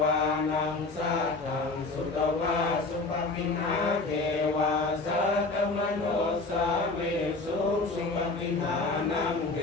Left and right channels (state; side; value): quieter; right; 3.5 dB